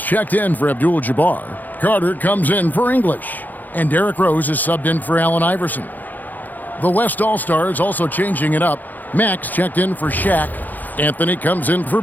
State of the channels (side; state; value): right; late; 0.084 ms